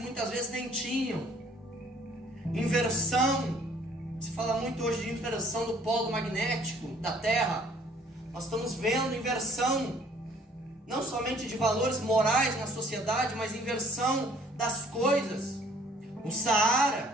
vezes nem tinham. Inversão, se fala muito hoje de inversão do polo magnético da Terra. Nós estamos vendo inversão, não somente de valores morais na sociedade, mas inversão das coisas. O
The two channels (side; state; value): both; normal; correlation 0.58